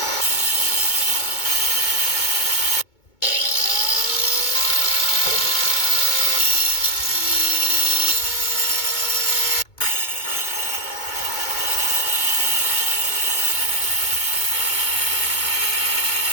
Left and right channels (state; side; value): late; right; 2.2 ms